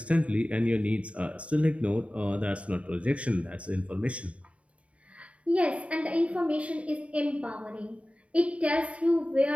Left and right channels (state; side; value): late; left; 0.063 ms